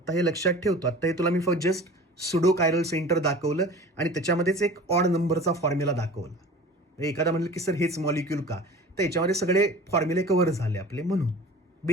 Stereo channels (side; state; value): both; normal; correlation 0.41